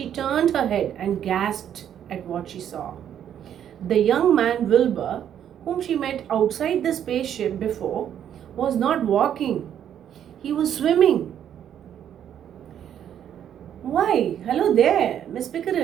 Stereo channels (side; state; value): left; quieter; 9.7 dB